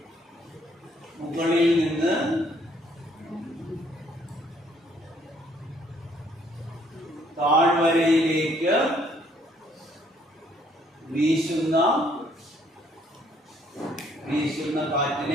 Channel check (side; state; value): both; normal; correlation 0.65